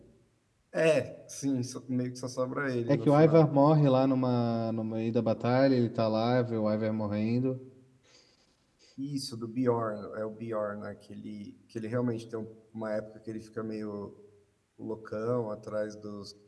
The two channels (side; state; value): both; identical; correlation 1.00